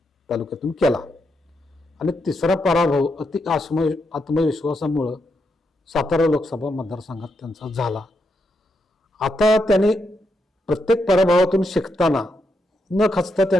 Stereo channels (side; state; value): both; normal; correlation 0.82